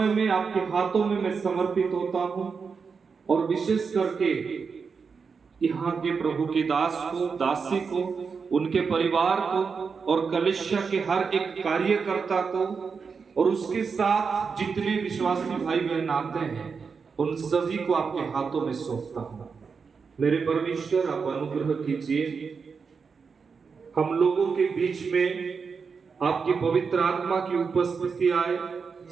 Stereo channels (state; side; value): quieter; left; 5.5 dB